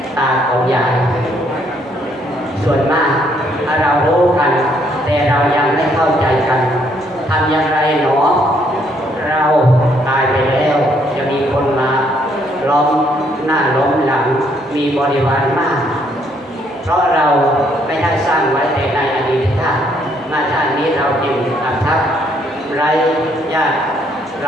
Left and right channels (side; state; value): both; normal; correlation 0.69